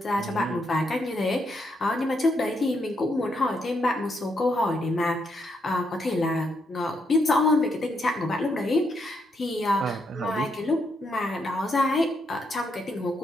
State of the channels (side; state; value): both; normal; correlation 0.78